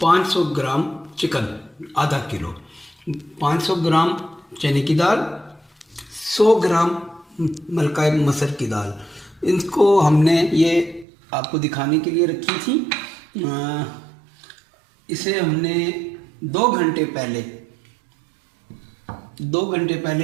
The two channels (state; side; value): drops out; left; at 11.1 s